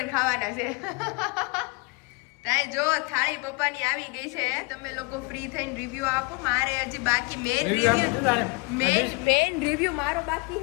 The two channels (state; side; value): quieter; right; 28.2 dB